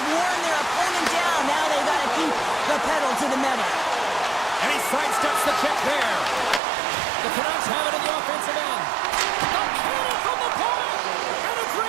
worn their opponent down. Now they've got to keep the pedal to the metal. And he sidesteps the check there. The Canucks have it in the offensive end. The cannon from the point, and a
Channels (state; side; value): drops out; left; at 6.6 s